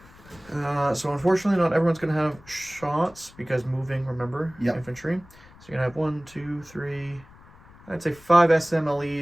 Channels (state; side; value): noise; left; rumble, 24 dB below the sound